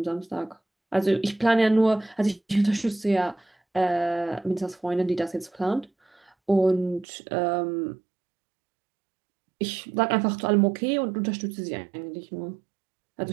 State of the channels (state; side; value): drops out; left; at 7.1 s